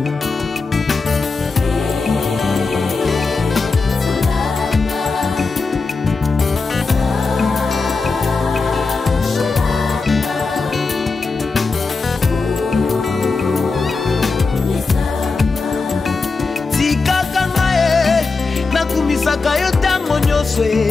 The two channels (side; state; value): right; quieter; 4.2 dB